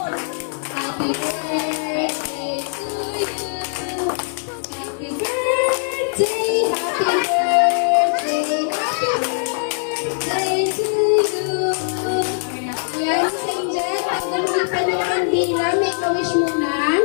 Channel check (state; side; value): silent; right; 65 dB below the other